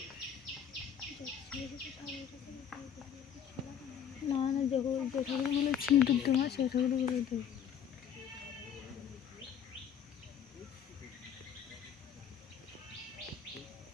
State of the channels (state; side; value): quieter; right; 8.6 dB